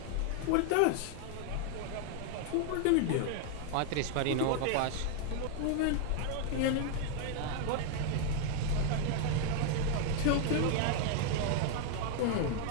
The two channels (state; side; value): different; both; correlation 0.00